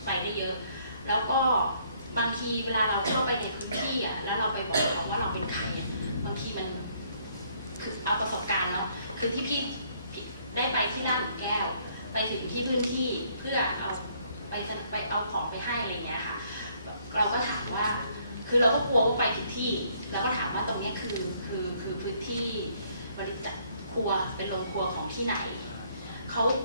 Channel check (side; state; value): both; inverted; correlation -0.66